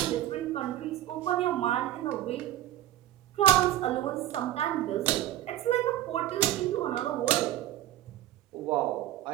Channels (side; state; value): left; quieter; 13.2 dB